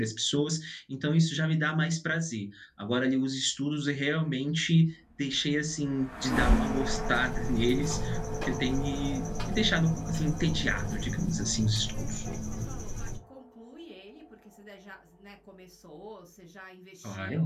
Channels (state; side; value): identical; both; correlation 1.00